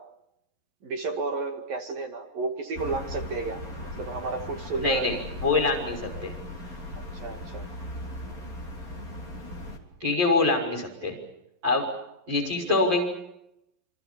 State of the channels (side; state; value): left; late; 11 ms